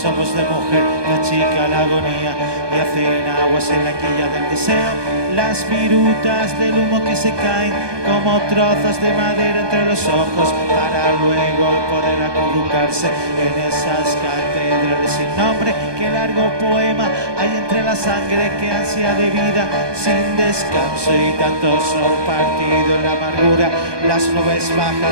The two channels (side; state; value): left; late; 1.2 ms